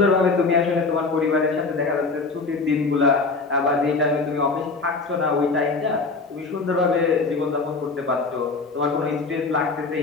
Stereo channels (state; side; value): quieter; right; 4.0 dB